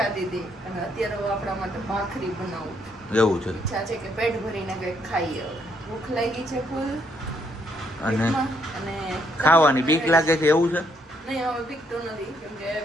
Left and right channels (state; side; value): normal; both; correlation 0.72